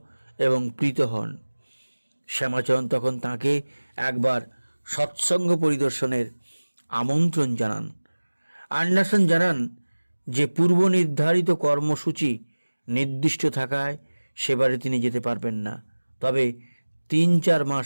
এবং প্রীত হন। শ্যামাচরণ তখন তাকে একবার সৎসঙ্গ পরিদর্শনের আমন্ত্রণ জানান। অ্যান্ডারসন জানান যে পূর্ব নির্ধারিত কর্মসূচি নির্দিষ্ট থাকায় সেবারে তিনি যেতে পারবেন না, তবে 3-4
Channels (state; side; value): inverted; both; correlation -1.00